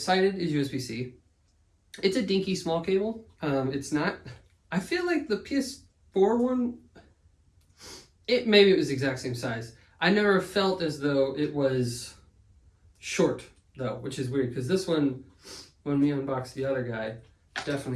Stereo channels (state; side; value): identical; both; correlation 1.00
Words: is USB-C. It's a dinky small cable. It's not, I feel like the PS4 one, maybe it was the exact same size. I never felt as though it was short though, which is weird because this one, when we unboxed the other guy,